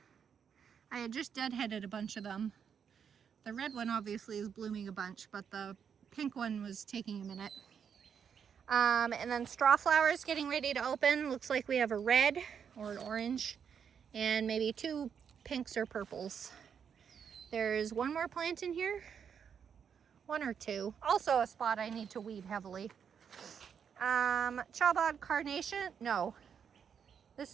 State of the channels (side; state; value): left; quieter; 7.4 dB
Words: I had just deadheaded a bunch of them. The red one obviously is blooming a bunch, but the pink one was taking a minute. And then straw flowers getting ready to open. Looks like we have a red or an orange and maybe 2 pinks or purples. There's one more plant in here. 1 or 2. Also a spot I need to weed heavily. Chabad carnation. No.